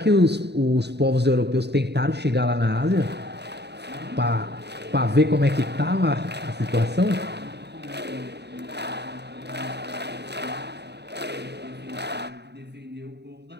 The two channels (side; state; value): left; late; 0.49 ms